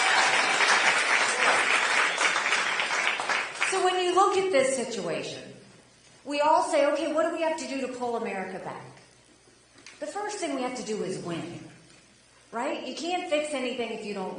So when you look at this situation, we all say, okay, what do we have to do to pull America back? The first thing we have to do is win, right? You can't fix anything if you don't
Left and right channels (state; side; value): identical; both; correlation 1.00